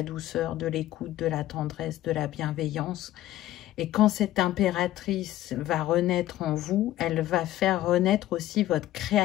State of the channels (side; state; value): right; quieter; 14.3 dB